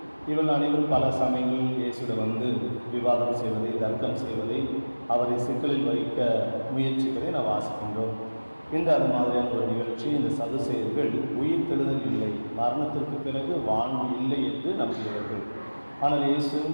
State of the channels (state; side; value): inverted; both; correlation -1.00